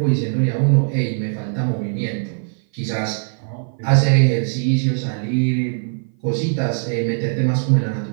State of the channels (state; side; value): silent; left; 57 dB below the other